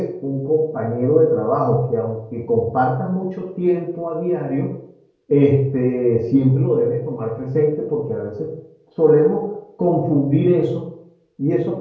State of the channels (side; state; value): both; identical; correlation 1.00